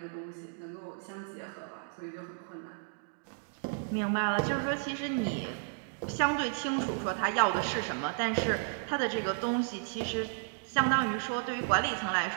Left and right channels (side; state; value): left; silent; digital silence